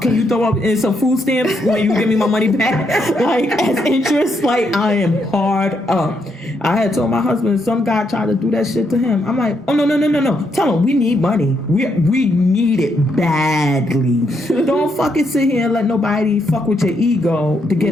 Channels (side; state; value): both; normal; correlation 0.78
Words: Can you throw up in some food stamps when you give me my money back? Like, as interest, like, I am hard up. I had told my husband, some guy tried to do that shit to him. I'm like, oh, no. Tell him we need money. We need it badly. Don't fucking sit here and let nobody fuck with your ego to get